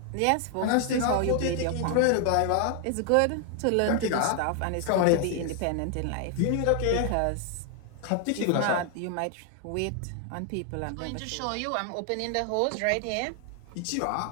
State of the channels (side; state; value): both; different; correlation 0.00